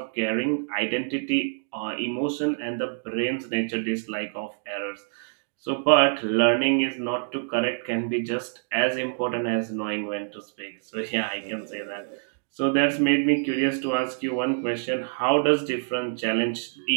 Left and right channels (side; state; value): left; silent; digital silence